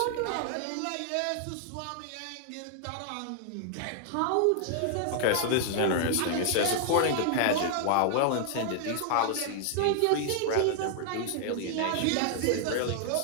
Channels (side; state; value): both; different; correlation -0.01